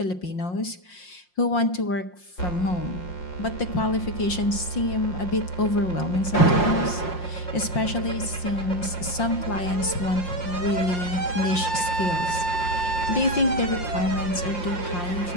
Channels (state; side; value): late; right; 5.6 ms